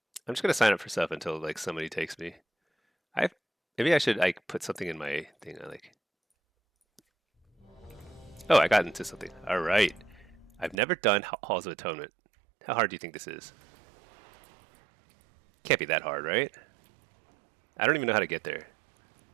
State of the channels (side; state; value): left; drops out; at 10.8 s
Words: I'm just gonna sign up for stuff until like somebody takes me. I maybe I should like put something in my thing. I like. Oh, I got into something. All right. I've never done Halls of Atonement. How hard do you think this is? Can't be that hard, right? I don't even know how to get there.